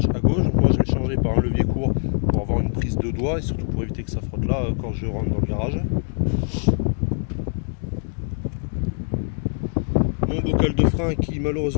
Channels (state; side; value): silent; right; 63 dB below the other